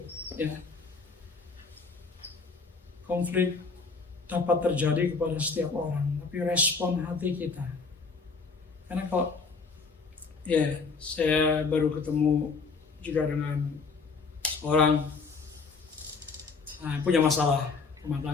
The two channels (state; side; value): quieter; right; 4.6 dB